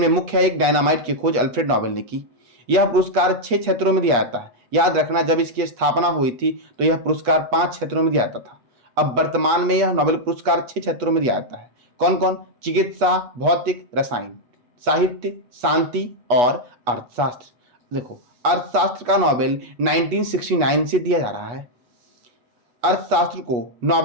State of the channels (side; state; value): left; late; 8.3 ms